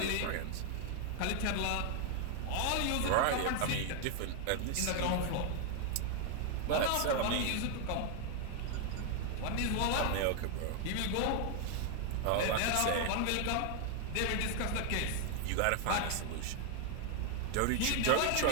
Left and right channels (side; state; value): both; different; correlation 0.00